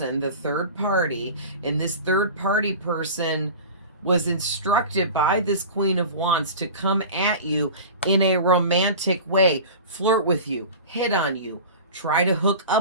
the third party, and this third party person was instructed by this Queen of Wands to come at you in a romantic way, flirt with you, hit on you, try to hook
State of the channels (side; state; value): both; inverted; correlation -0.34